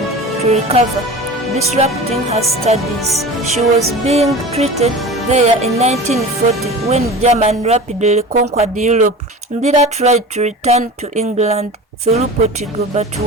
to recover, disrupting her studies. She was being treated there in 1940 when Germany rapidly conquered Europe. Indira tried to return to England through Portugal but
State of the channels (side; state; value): both; normal; correlation 0.35